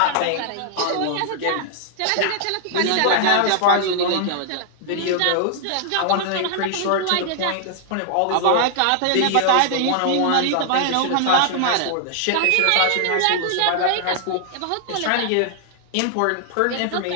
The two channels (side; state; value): both; different; correlation 0.00